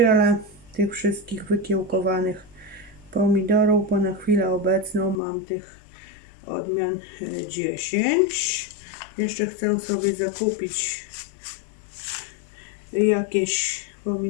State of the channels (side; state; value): right; drops out; at 5.2 s